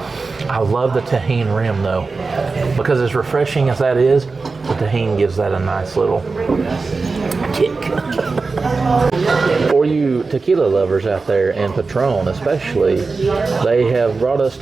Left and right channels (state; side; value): quieter; left; 4.1 dB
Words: I love the tahini rim, though, because as refreshing as that is, the tahini gives that a nice little kick. For you tequila lovers out there, and Patron especially, they have brought us